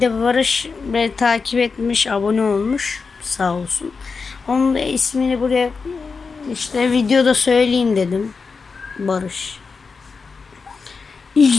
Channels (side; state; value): right; quieter; 4.8 dB